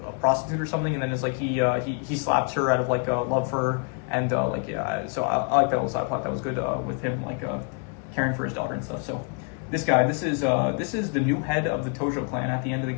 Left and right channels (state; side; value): quieter; right; 35.3 dB